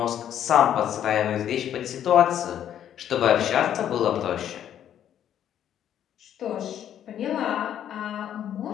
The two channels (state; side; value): quieter; right; 10.3 dB